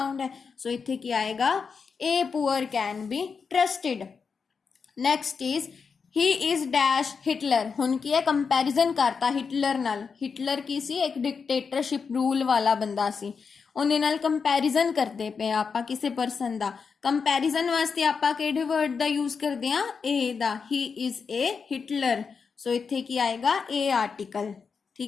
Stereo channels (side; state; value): right; quieter; 5.6 dB